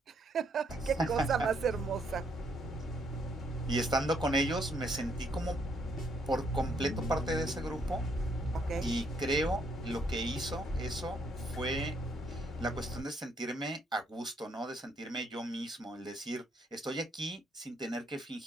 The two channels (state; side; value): normal; both; correlation 0.71